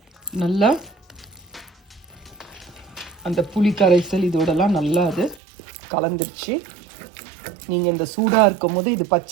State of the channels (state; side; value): drops out; left; at 5.4 s